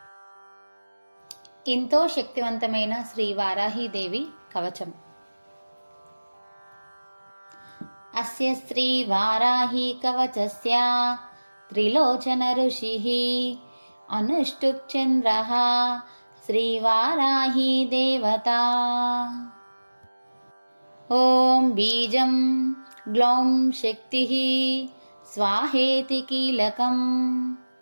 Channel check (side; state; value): both; inverted; correlation -1.00